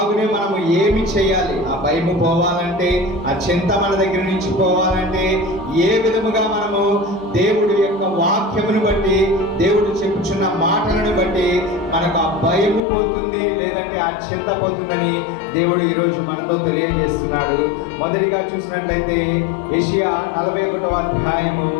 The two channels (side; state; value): right; drops out; at 12.8 s